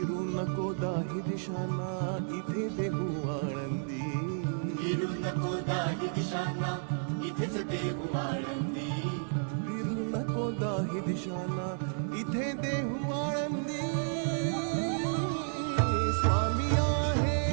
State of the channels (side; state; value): left; silent; 56 dB below the other